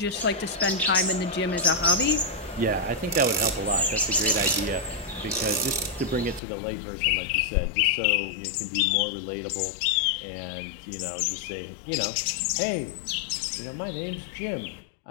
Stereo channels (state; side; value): drops out; right; at 6.4 s